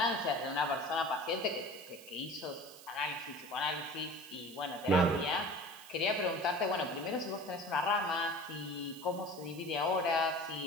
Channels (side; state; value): right; noise; hiss, 18 dB below the sound